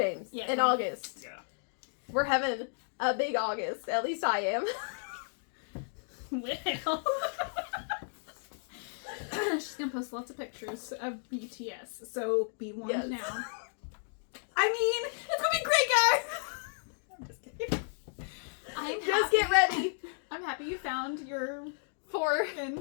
in August. Yeah. We're having a big August. At least I am. Well. She's going to post lots of pictures of BTS. So be warned now. I mean, it's going to be great, guys. I'm just kidding. Just get ready. I'm happy you found your for I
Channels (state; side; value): silent; right; digital silence